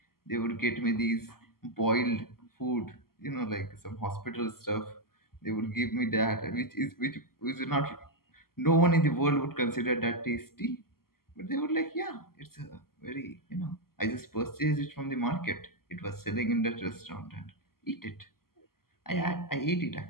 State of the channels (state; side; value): late; right; 0.92 ms